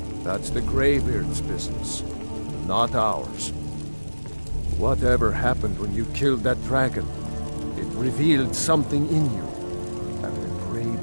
That's the Greybeards' business, not ours. Whatever happened when you killed that dragon, it revealed something in you, and the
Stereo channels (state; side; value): inverted; both; correlation -1.00